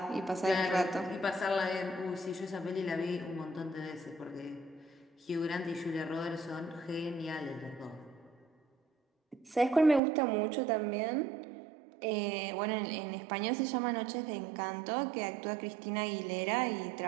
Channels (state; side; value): drops out; left; at 10.0 s